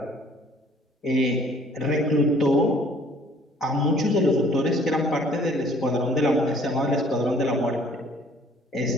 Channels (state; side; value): normal; both; correlation 0.56